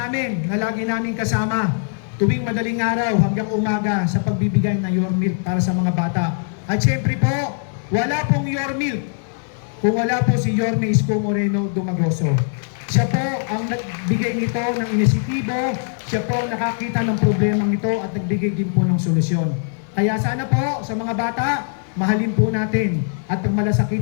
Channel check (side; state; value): right; silent; 65 dB below the other